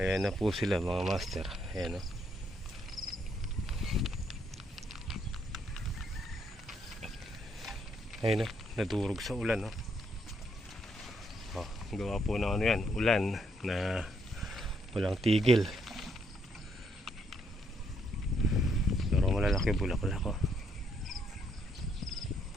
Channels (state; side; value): normal; both; correlation 0.73